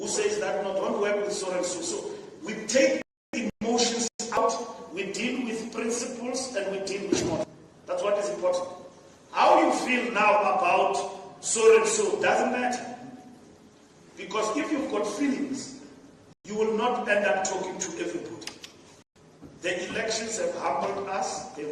says that no, don't work with so and so. So we take emotions out, we deal with principles, and we deal with models. That's what is important. How you feel now about so and so doesn't matter. Because if you've got feelings, you will not end up talking to everybody. The elections have humbled us,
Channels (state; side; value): identical; both; correlation 1.00